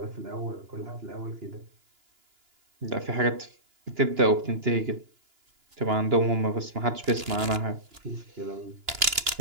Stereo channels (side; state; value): left; late; 2.9 ms